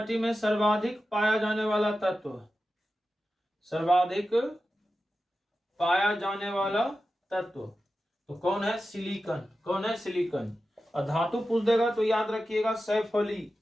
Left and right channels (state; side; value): normal; both; correlation 0.92